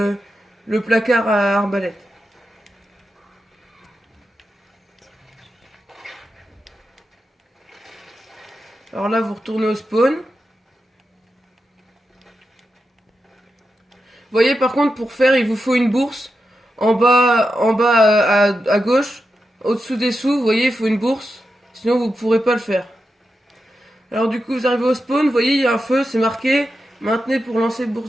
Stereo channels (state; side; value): normal; both; correlation 0.89